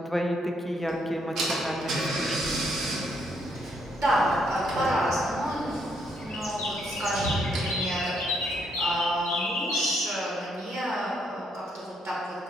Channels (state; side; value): normal; both; correlation 0.72